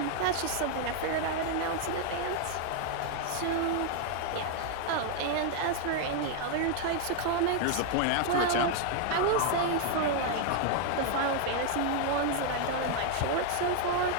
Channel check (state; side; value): different; both; correlation 0.00